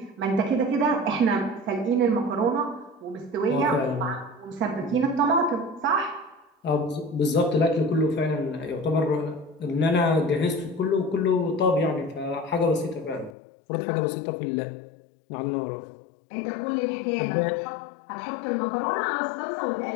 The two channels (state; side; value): drops out; right; at 13.3 s